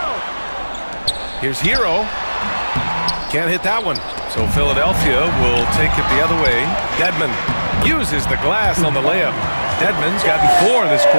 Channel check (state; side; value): inverted; both; correlation -1.00